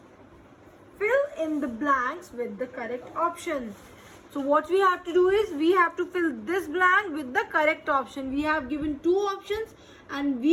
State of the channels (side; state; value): both; identical; correlation 1.00